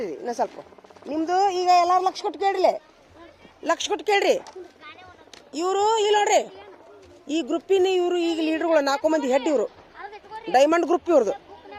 ಇನ್ನೂ ಸ್ವಲ್ಪ. ನಿಮ್ದು ಈಗ ಎಲ್ಲಾರು ಲಕ್ಷ ಕೊಟ್ಟು ಕೇಳ್ರಿ, ಲಕ್ಷ ಕೊಟ್ಟು ಕೇಳ್ರಿ. ಇವರು ಇಲ್ಲಿ ನೋಡ್ರಿ, ಈ ಗ್ರೂಪಿನ ಇವರು ಈಗ ಲೀಡರ್ಗಳು 4 ಮಂದಿ ಹೆಡ್. ಇವರು ಡೈಮಂಡ್ ಗ್ರೂಪ್, ಇವ್ರದ್ದು.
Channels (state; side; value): identical; both; correlation 1.00